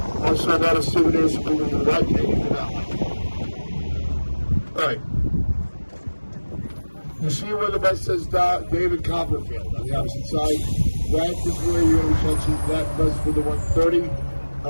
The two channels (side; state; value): both; inverted; correlation -1.00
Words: Also, a lot of souvenirs for people who like it and you do not like it. All right. You see where the bus says David Copperfield on the opposite side? That is where you're going to catch that bus for the 1:30.